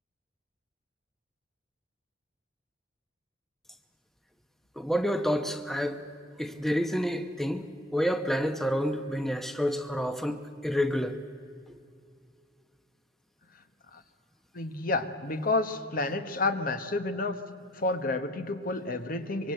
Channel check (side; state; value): both; normal; correlation 0.57